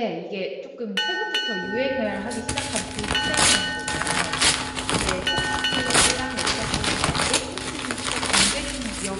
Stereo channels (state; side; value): identical; both; correlation 1.00